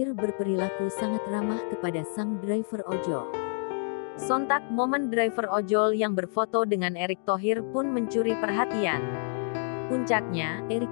berperilaku sangat ramah kepada sang driver ojol. Sontak momen driver ojol yang berfoto dengan Erick Thohir pun mencuri perhatian. Puncaknya,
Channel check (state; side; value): silent; right; 59 dB below the other